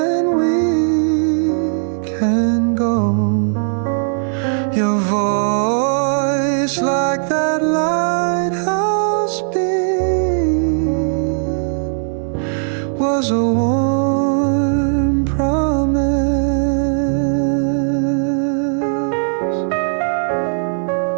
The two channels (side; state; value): left; silent; 63 dB below the other